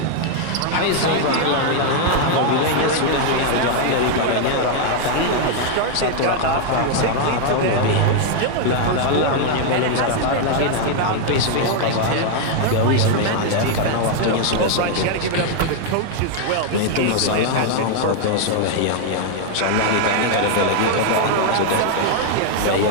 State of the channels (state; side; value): different; both; correlation 0.00